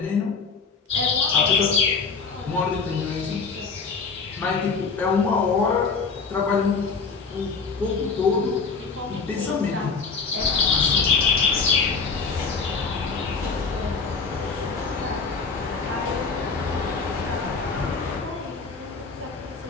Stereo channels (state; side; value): quieter; right; 4.9 dB